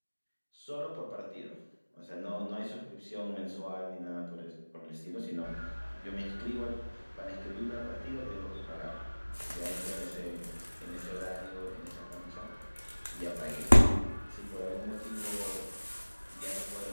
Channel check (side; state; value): both; inverted; correlation -1.00